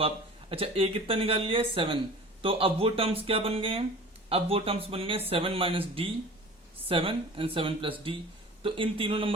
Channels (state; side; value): normal; both; correlation 0.41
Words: आप, अच्छा a कितना निकाल लिया है, 7। तो अब वो टर्म्स क्या बन गए हैं, अब वो टर्म्स बन गए 7 minus D, 7 and 7 plus D. तो इन तीनों